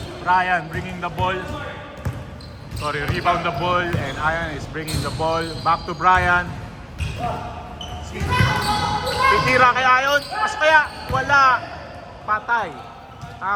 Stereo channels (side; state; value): both; identical; correlation 1.00